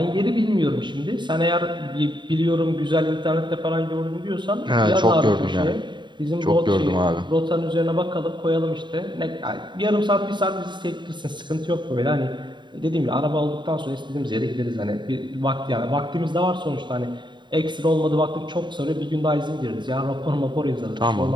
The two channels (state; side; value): late; left; 0.22 ms